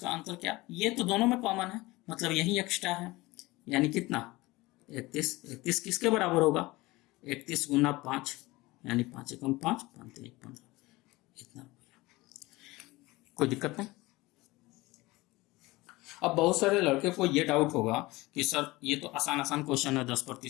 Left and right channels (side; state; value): right; quieter; 20.9 dB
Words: अंतर क्या, ये तो दोनों में कॉमन है, मतलब यही एक्स्ट्रा है, यानी कितना 31। 31 किसके बराबर होगा, 31 गुना 5 यानी 5 एकम 5, 5 3 15, इतना। कोई दिक्कत नहीं। अब बहुत सारे लड़के को ये डाउट होगा कि सर ये तो आसान क्वेश्चन है,